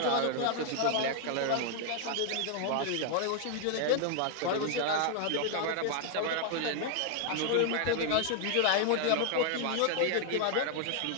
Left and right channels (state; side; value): different; both; correlation 0.00